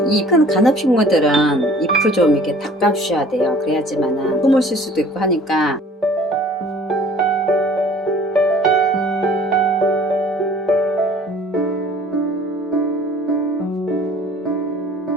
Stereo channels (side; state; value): both; normal; correlation 0.51